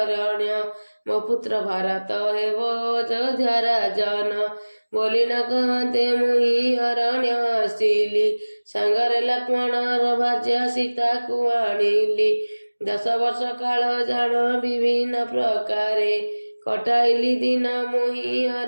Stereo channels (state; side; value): inverted; both; correlation -1.00